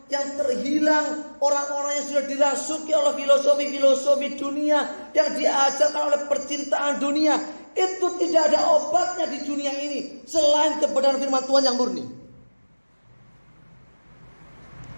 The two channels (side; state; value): both; inverted; correlation -1.00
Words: yang terhilang, orang-orang yang sudah dirasuki oleh filosofi-filosofi dunia, yang diajarkan oleh percintaan dunia, itu tidak ada obatnya di dunia ini selain kebenaran firman Tuhan yang murni.